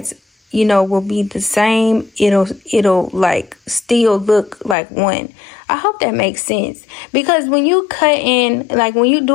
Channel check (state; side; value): drops out; right; at 4.8 s